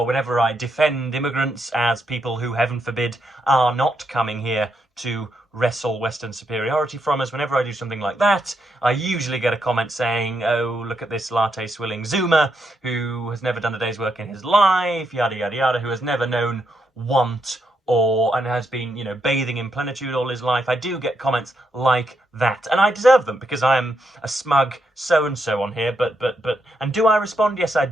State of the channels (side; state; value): both; normal; correlation 0.80